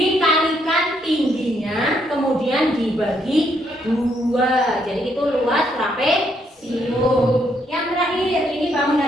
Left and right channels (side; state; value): both; normal; correlation 0.73